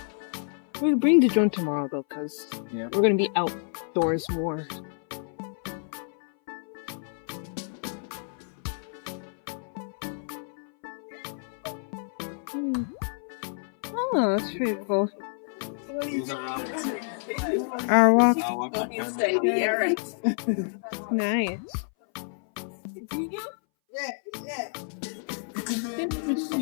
We'll bring the drone tomorrow though, because we're gonna be outdoors more. Oh, that's pretty cool. Our walk. Nice.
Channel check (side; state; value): right; silent; 59 dB below the other